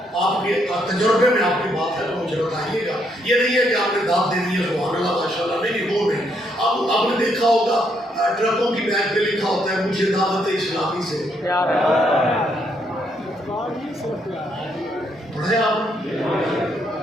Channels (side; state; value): both; normal; correlation 0.74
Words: آپ کے تجربے میں آپ کی بات ہے تو مجھے بتائیے گا، یہ نہیں ہے کہ آپ نے داد دینی ہے سبحان اللہ ماشاءاللہ، نہیں وہ نہیں۔ آپ نے دیکھا ہوگا ٹرکوں کی بیگ پہ لکھا ہوتا ہے مجھے دعوت اسلامی سے، پڑھے آپ